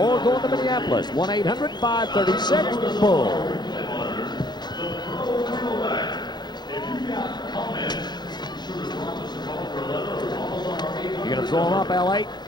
going to Minneapolis. 1-800-536-BULL. You going to throw them up, L.A.?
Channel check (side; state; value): right; late; 0.21 ms